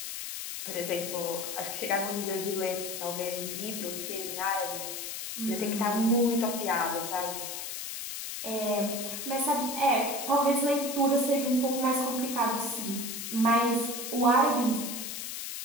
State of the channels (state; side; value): noise; left; hiss, 6 dB below the sound